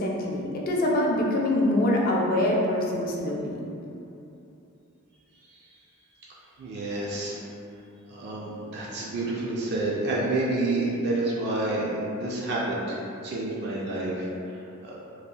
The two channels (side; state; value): both; normal; correlation 0.34